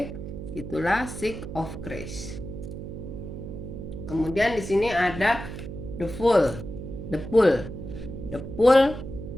itulah Six of Grace. Kemudian di sini ada the Fool.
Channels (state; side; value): noise; right; hum, 9 dB below the sound